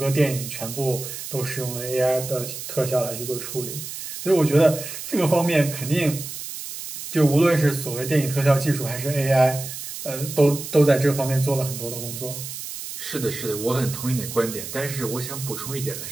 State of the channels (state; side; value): noise; right; hiss, 9 dB below the sound